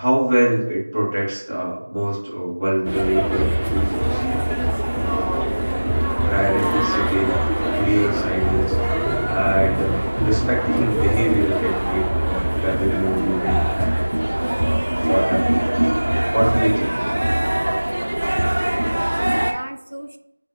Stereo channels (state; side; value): inverted; both; correlation -1.00